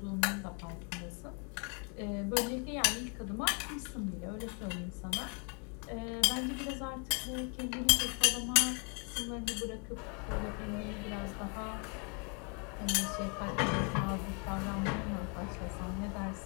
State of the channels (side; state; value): right; quieter; 36.9 dB